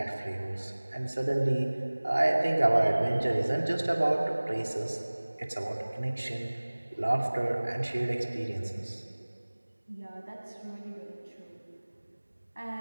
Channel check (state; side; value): inverted; both; correlation -1.00